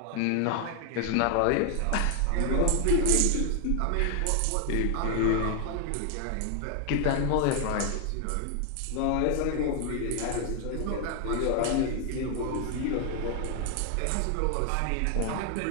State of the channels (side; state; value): both; different; correlation 0.00